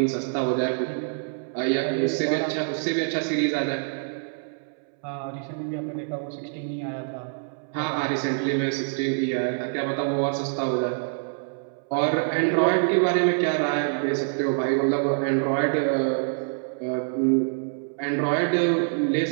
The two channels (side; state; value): left; silent; 61 dB below the other